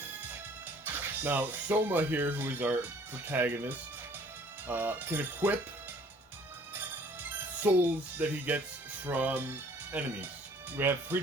Now, Soma here, who is our protagonist, can equip souls that he gets from enemies. We have 3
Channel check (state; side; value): normal; both; correlation 0.56